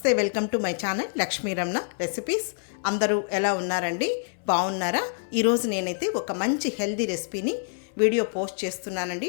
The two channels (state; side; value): silent; right; 61 dB below the other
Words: Welcome to my channel Lakshmi Ramana recipes. అందరూ ఎలా ఉన్నారండి? బాగున్నారా? ఈరోజు నేనైతే ఒక మంచి హెల్దీ రెసిపీని వీడియో పోస్ట్ చేస్తున్నానండి.